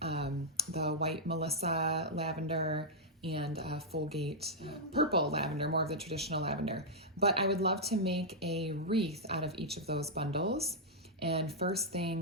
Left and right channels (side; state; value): both; normal; correlation -0.06